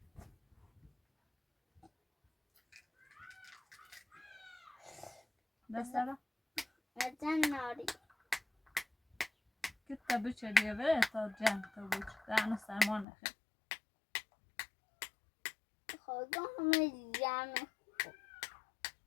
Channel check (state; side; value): drops out; right; at 13.1 s